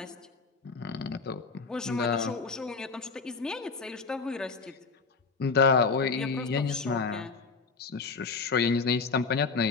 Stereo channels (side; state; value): right; quieter; 4.6 dB